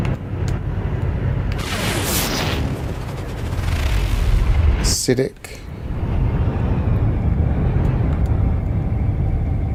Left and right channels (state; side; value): identical; both; correlation 1.00